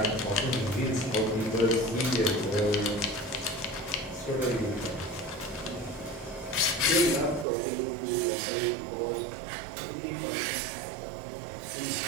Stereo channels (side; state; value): left; drops out; at 7.5 s